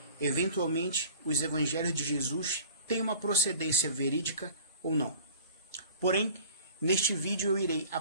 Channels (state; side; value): inverted; both; correlation -0.44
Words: eventualmente, os evangelhos de Jesus têm uma procedência verídica ou não. Porém, neste vídeo eu irei